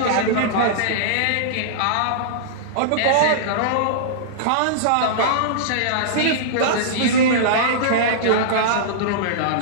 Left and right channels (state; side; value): different; both; correlation -0.03